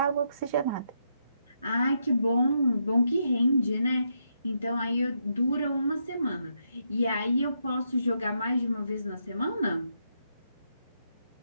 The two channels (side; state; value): both; inverted; correlation -0.80